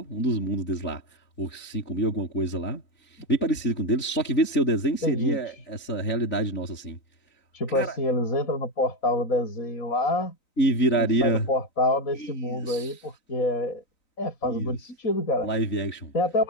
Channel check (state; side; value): late; right; 3.9 ms